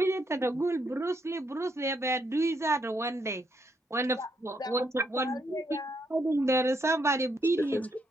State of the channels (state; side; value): normal; both; correlation 0.76